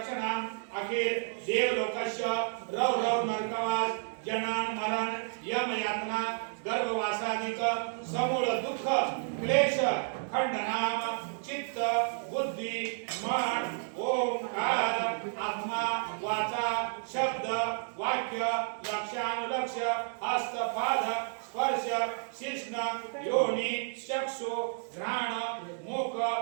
अखिल देव लोकश रव रव नरकवास जनान मरण यम यातना गर्भवासादिक समूळ दुःख क्लेश खंडनाम चित्त बुद्धी मन ओंकार आत्मा वाचा शब्द वाक्य लक्षानुलक्ष हस्त पाद स्पर्श शिष्ण योनी चक्षु घ्राण मुख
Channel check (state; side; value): silent; left; digital silence